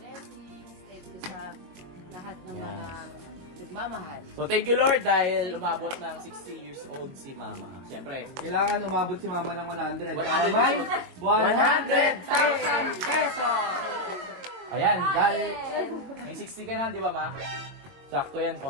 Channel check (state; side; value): late; left; 22 ms